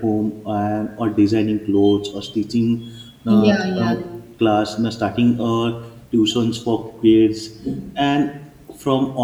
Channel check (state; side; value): identical; both; correlation 1.00